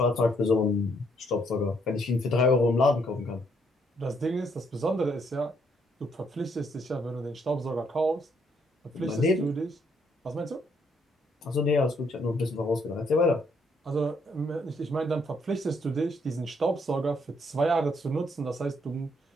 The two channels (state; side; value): normal; both; correlation 0.71